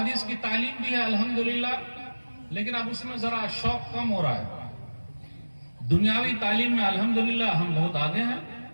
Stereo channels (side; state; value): both; inverted; correlation -1.00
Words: की तालीम भी है अल्हम्दुलिल्लाह, लेकिन अब उसमें जरा शौक कम हो रहा है। दुनियावी तालीम में अल्हम्दुलिल्लाह हम बहुत आगे हैं,